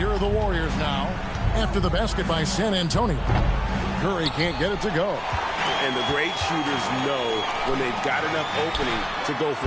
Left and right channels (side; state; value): both; identical; correlation 1.00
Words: are the Warriors now. After the basket by San Antonio. Curry can't get it to go. And the great shooters know when they've got enough opening to go for